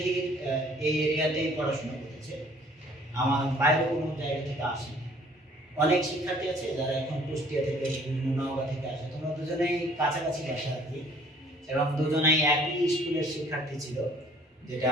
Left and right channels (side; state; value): both; normal; correlation 0.56